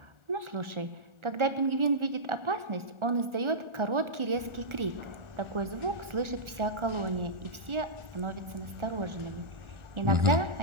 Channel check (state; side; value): late; left; 1.4 ms